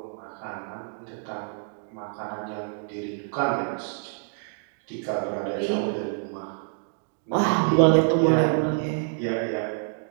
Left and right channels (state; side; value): silent; left; 60 dB below the other